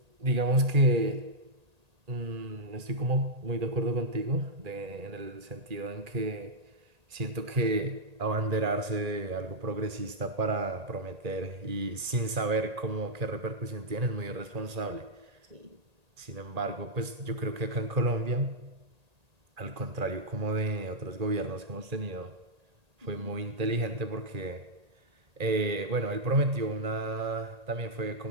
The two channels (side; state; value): left; late; 1.8 ms